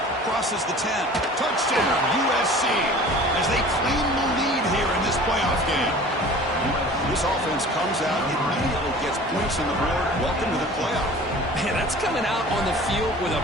Crosses the 10. Touchdown, USC, as they claim the lead here in this playoff game. This offense comes out, immediately gets points on the board. Welcome to the playoff. Man, that's coming out on the field with a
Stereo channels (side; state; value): both; normal; correlation 0.43